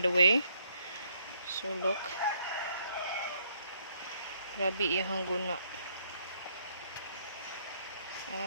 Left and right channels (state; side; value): inverted; both; correlation -0.70